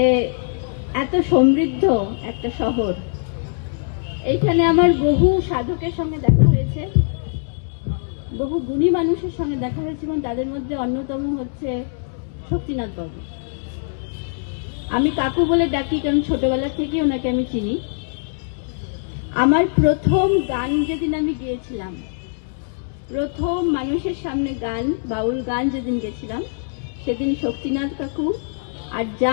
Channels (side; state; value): right; silent; digital silence